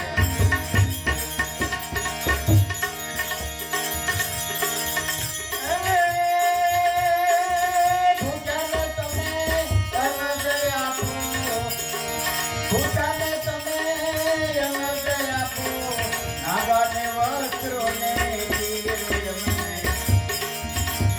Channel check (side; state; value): both; identical; correlation 1.00